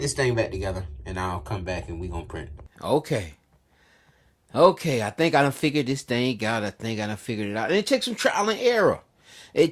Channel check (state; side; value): identical; both; correlation 1.00